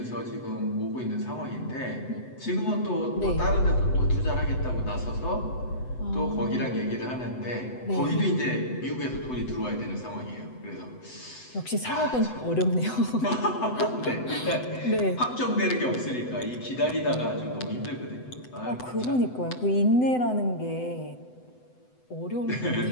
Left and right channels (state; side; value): late; right; 7.9 ms